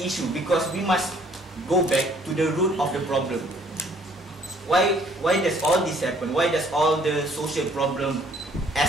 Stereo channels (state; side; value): normal; both; correlation 0.61